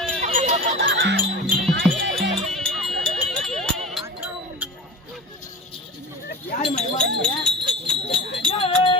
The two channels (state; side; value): normal; both; correlation 0.34